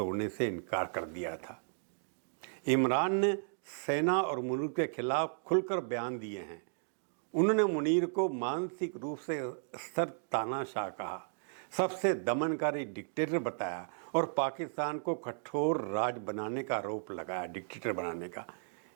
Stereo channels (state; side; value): silent; left; digital silence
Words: से इनकार कर दिया था। इमरान ने सेना और मुल्क के खिलाफ खुलकर बयान दिए हैं। उन्होंने मुनीर को मानसिक रूप से स्तर तानाशाह कहा, सबसे दमनकारी डिक्टेटर बताया और पाकिस्तान को कठोर राज बनाने का आरोप लगाया, डिक्टेटर बनाने का।